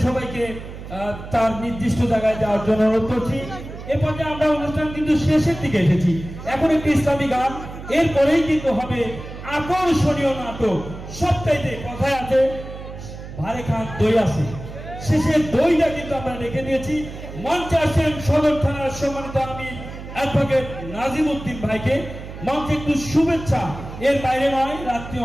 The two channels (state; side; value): noise; right; hum, 12 dB below the sound